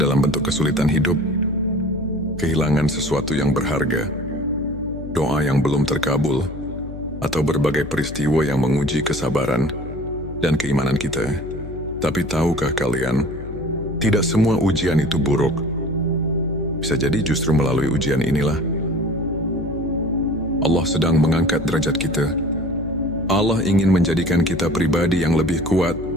bentuk kesulitan hidup, kehilangan sesuatu yang berharga, doa yang belum terkabul, atau berbagai peristiwa yang menguji kesabaran dan keimanan kita. Tapi tahukah kalian, tidak semua ujian itu buruk. Bisa jadi justru melalui ujian inilah Allah sedang mengangkat derajat kita. Allah ingin menjadikan kita pribadi yang lebih kuat,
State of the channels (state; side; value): noise; left; hum, 11 dB below the sound